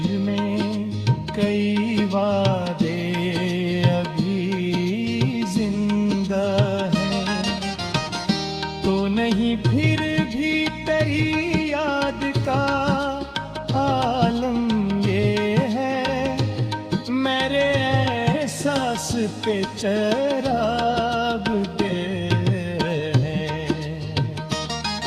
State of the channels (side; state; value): both; identical; correlation 1.00